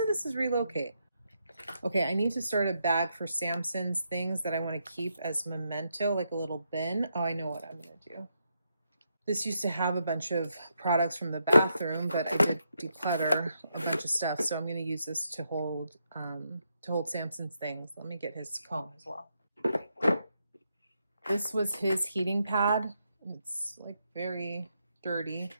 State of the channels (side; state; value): both; inverted; correlation -0.81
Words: this is relocate. Okay, I need to start a bag for Samson's things that I wanna keep as memento, like a little bin. Oh, I know what I'm gonna do. This used to have a bunch of products from the bathroom, but I did declutter a bunch of stuff. So I'm going to use this to hold Samson's things. Let me get his comb as well. This was his heating pad. It's like very dirty.